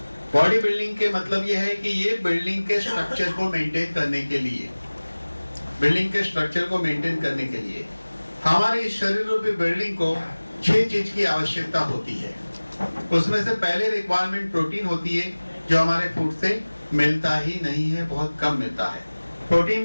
बॉडी बिल्डिंग के मतलब यह है कि ये बिल्डिंग के स्ट्रक्चर को मेंटेन करने के लिए, बिल्डिंग के स्ट्रक्चर को मेंटेन करने के लिए हमारे शरीर रूपी बिल्डिंग को 6 चीज की आवश्यकता होती है। उसमें से पहले रिक्वायरमेंट प्रोटीन होती है, जो हमारे फूड से मिलता ही नहीं है, बहुत कम मिलता है।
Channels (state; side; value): inverted; both; correlation -1.00